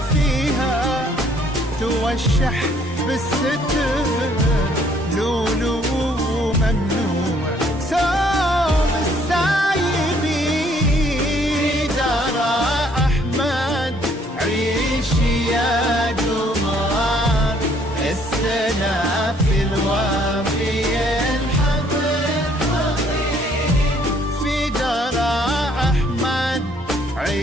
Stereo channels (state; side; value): normal; both; correlation 0.63